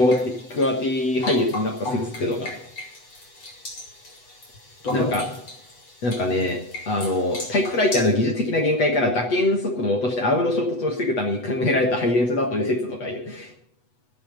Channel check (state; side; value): late; right; 8.1 ms